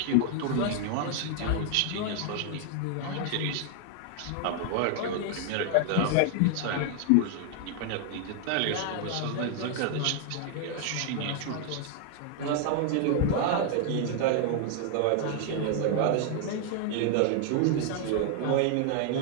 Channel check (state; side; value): different; both; correlation 0.00